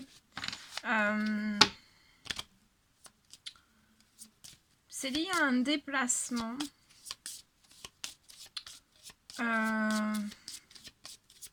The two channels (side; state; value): both; identical; correlation 1.00